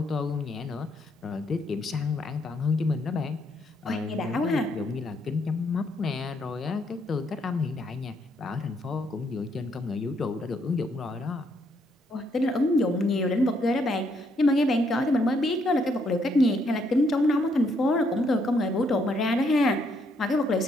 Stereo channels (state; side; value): normal; both; correlation 0.72